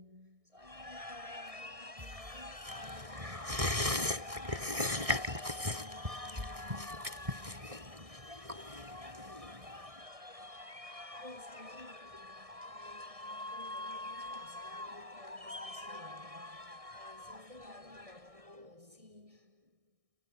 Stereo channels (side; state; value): left; late; 1.6 ms